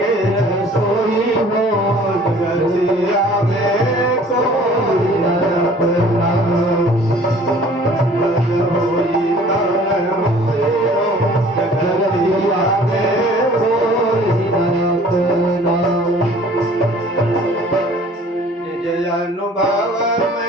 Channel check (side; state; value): both; normal; correlation 0.51